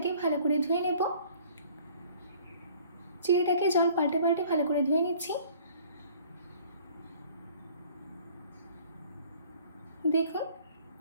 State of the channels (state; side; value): inverted; both; correlation -0.53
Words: ভালো করে ধুয়ে নেব। চিড়েটাকে জল পাল্টে পাল্টে ভালো করে ধুয়ে নিচ্ছি। দেখুন,